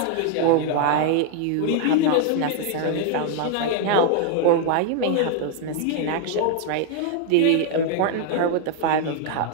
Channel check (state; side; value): different; both; correlation 0.00